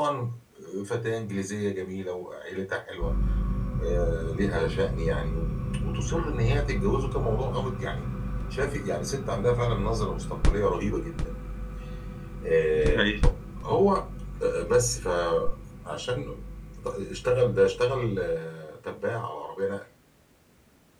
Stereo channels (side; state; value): both; identical; correlation 1.00